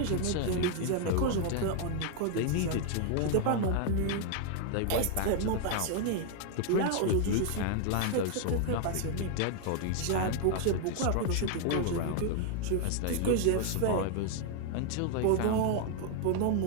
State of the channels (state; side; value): different; both; correlation 0.00